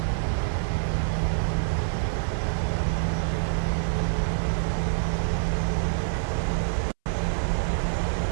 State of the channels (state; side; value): silent; left; 61 dB below the other